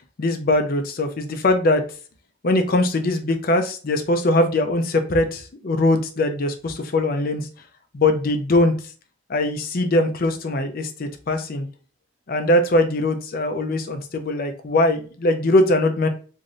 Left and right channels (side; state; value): both; normal; correlation 0.32